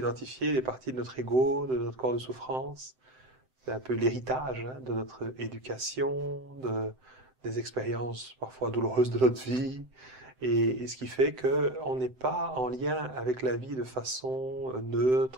des parties de notre ego, de notre corps de souffrance. C'est un peu l'héritage de notre éducation, des expériences parfois douloureuses de notre vie, et ce qui fait que on n'est pas en lien avec la vie de façon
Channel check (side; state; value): left; late; 7.8 ms